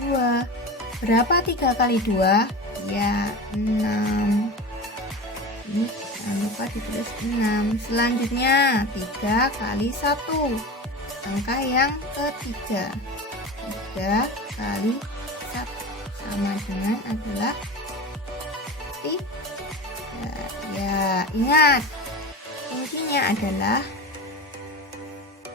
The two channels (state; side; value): normal; both; correlation 0.30